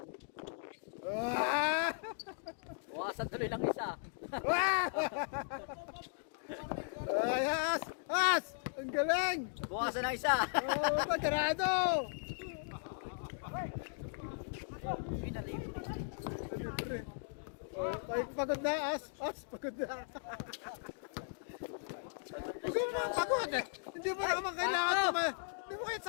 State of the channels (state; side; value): silent; right; digital silence